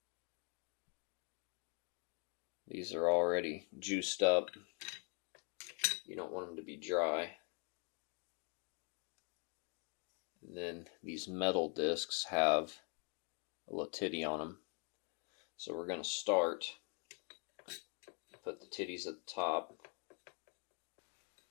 These are already juiced up. You don't want them to be dry. And then these metal discs have a little titty on them. So we're going to start, put the titties at the top.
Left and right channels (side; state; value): right; quieter; 37.8 dB